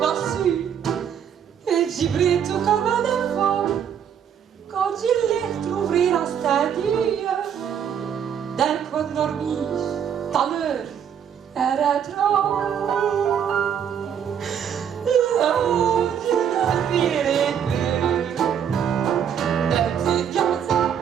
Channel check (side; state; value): left; quieter; 8.5 dB